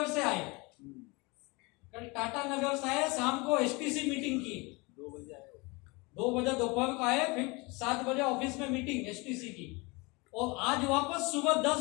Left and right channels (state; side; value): quieter; right; 26.6 dB